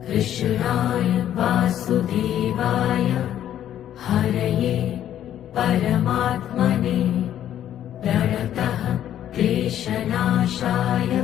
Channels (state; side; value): quieter; right; 11.1 dB